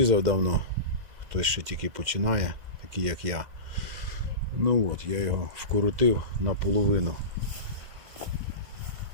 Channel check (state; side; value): late; left; 2.1 ms